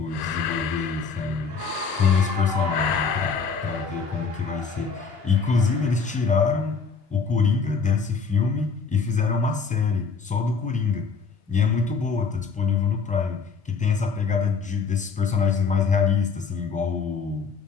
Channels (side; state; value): right; quieter; 5.2 dB